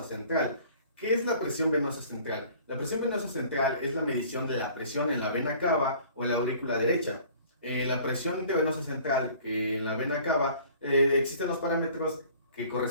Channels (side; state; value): both; inverted; correlation -0.51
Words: central. ¿Qué es la presión venosa central? La presión venosa central es la medición de la presión en la vena cava o en la aurícula derecha. La presión intravenosa central, que en la vena cava, existen los parámetros que